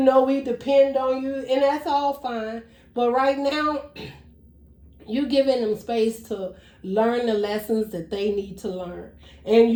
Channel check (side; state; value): both; identical; correlation 1.00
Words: we depend on you, and that's all fine. But right now, You giving them space to learn the lessons that they need to learn. And